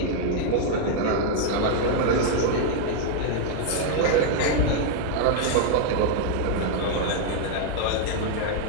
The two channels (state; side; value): different; both; correlation 0.00